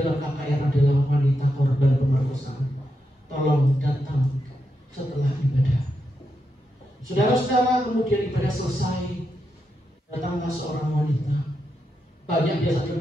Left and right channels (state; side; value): normal; both; correlation 0.85